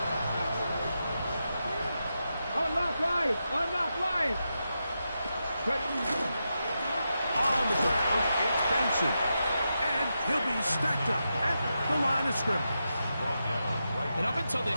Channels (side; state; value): both; inverted; correlation -0.87